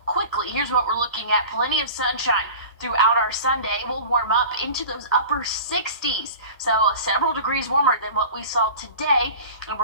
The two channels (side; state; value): both; inverted; correlation -0.38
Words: quickly. Here's what we're looking at. Plenty of sunshine throughout our Sunday. We'll warm up into those upper 60s. So several degrees warmer than what we saw today. And